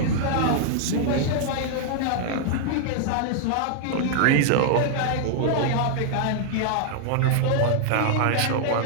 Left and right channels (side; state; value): both; different; correlation -0.01